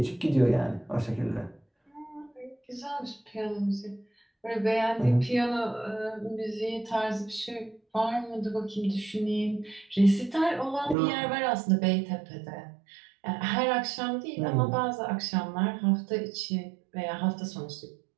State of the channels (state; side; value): drops out; left; at 11.0 s